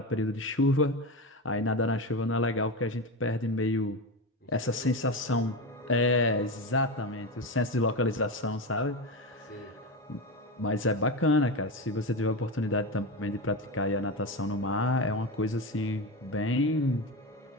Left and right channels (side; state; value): both; normal; correlation 0.19